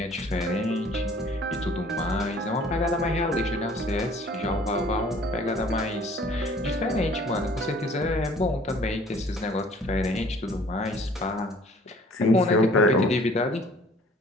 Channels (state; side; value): normal; both; correlation 0.53